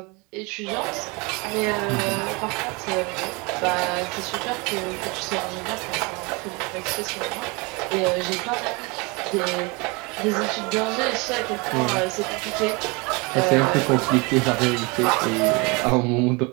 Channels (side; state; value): left; quieter; 27.9 dB